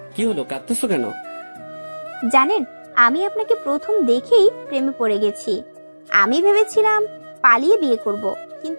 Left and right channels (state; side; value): inverted; both; correlation -1.00